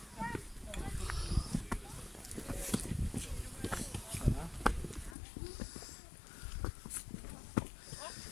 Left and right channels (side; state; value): right; drops out; at 5.2 s